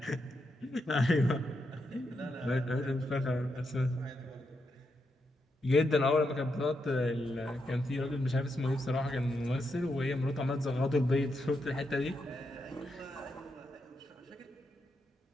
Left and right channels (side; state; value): both; normal; correlation 0.83